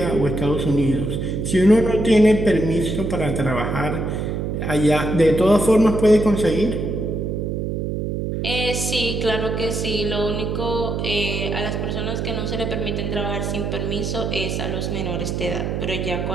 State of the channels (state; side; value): noise; right; hum, 2 dB below the sound